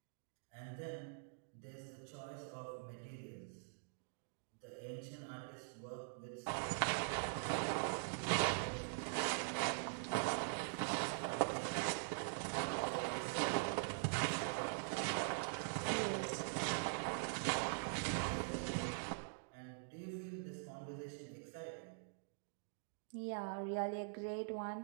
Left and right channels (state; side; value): silent; left; digital silence